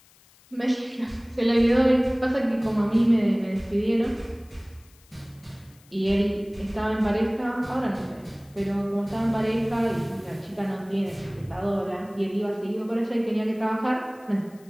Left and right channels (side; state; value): left; noise; hiss, 29 dB below the sound